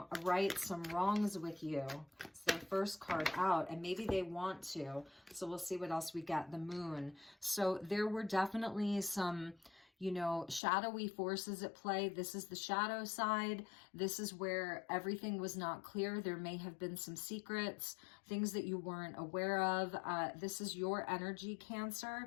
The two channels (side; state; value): right; drops out; at 10.6 s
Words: some wrongs with you. It's their first card out, and maybe they want to. So we'll see what else we get. The Moon. So there were definitely some, you know, shadowy forces at play. This is the shadow side. This is where everything was not clear. There may have been some secrets, things that you weren't aware of. This is your energy,